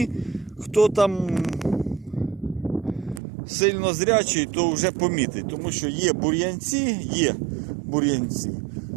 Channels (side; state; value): left; drops out; at 3.2 s